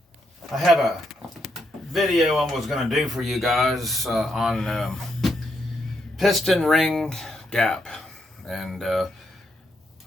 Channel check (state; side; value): normal; both; correlation 0.78